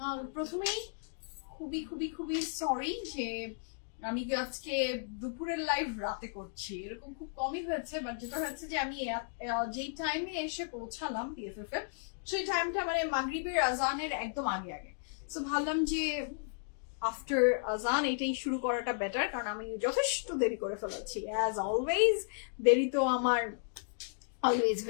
প্রথমেই খুবই সরি যে আমি আজকে দুপুরের লাইভ রাতে করছি, এরকম খুব কমই হয়েছে। বাট যেটা হয়েছে যে আমি যেই টাইমে এসে পৌঁছালাম পিএফএফ এর, সেই টাইমটা মানে মাগরিবের আজানের একদম আগে। সো ভাবলাম যে আফটার আজান এটাই শুরু করাটা বেটার, কারণ আমি যথেষ্ট দেরি করে ফেলেছি। অ্যাজ অলওয়েজ দেরি তো আমার অলওয়েজ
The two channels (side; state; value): right; silent; digital silence